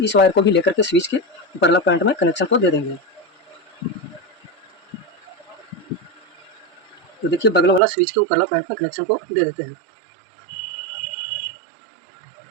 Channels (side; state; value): left; drops out; at 7.8 s